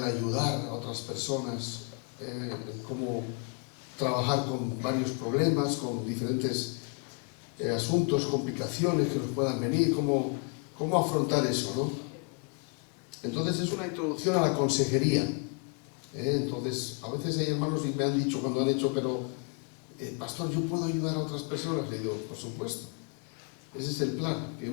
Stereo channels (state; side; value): quieter; right; 35.4 dB